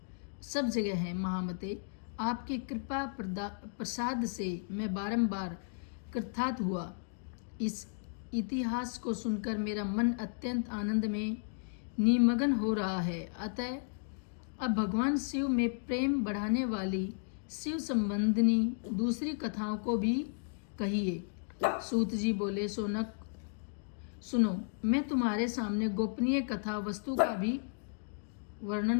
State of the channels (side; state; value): right; silent; digital silence